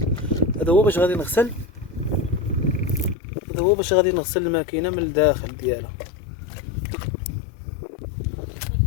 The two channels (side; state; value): right; drops out; at 3.2 s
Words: هذا هو باش غادي نغسل، هذا هو باش غادي نغسل الماكينه من الداخل ديالها.